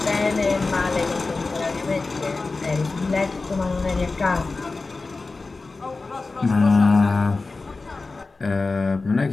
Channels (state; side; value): quieter; right; 3.7 dB